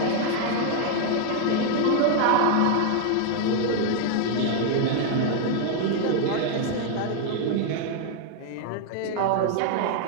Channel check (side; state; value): both; different; correlation 0.00